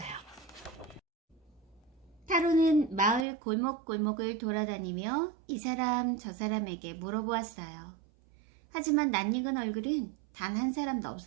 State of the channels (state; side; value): drops out; left; at 3.2 s